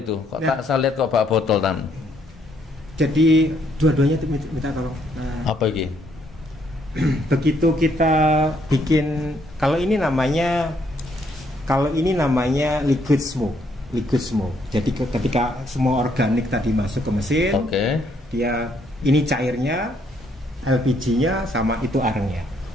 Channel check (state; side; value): normal; both; correlation 0.71